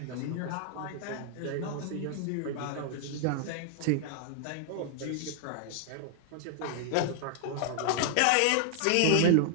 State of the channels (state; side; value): different; both; correlation 0.00